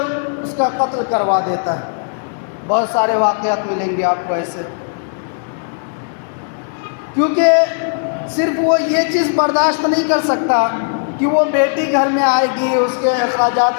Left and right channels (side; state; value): right; silent; 68 dB below the other